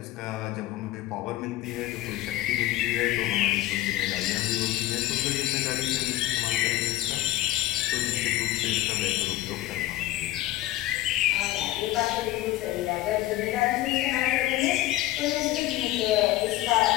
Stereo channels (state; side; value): quieter; right; 16.0 dB